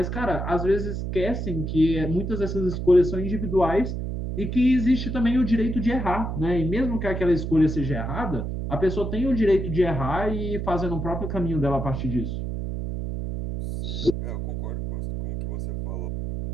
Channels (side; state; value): right; noise; hum, 4 dB below the sound